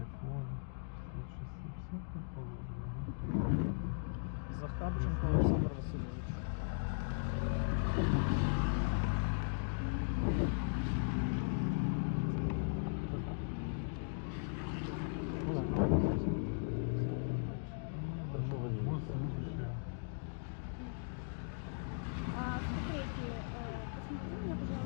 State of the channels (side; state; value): right; silent; digital silence